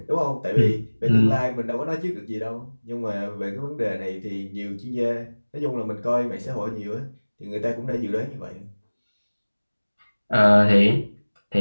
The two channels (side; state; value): both; inverted; correlation -1.00